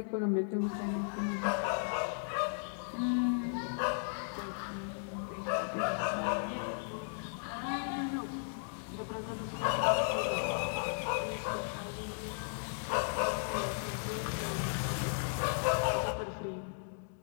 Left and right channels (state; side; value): silent; right; digital silence